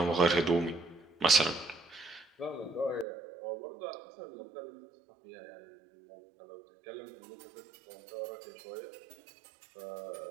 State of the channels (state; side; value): drops out; left; at 3.1 s